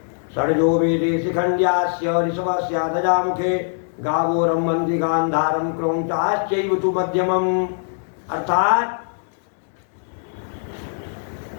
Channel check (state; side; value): silent; right; 64 dB below the other